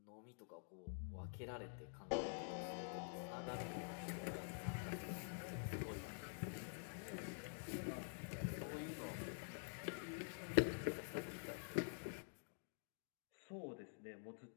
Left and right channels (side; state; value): right; silent; digital silence